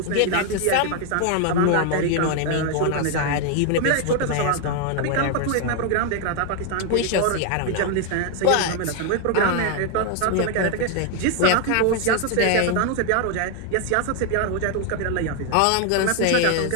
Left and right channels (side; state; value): both; different; correlation 0.01